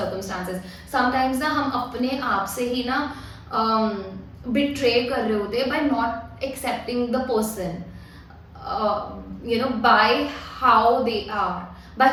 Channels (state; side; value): identical; both; correlation 1.00